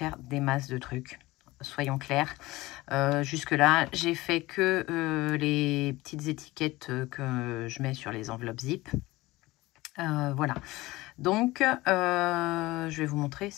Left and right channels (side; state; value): right; quieter; 19.6 dB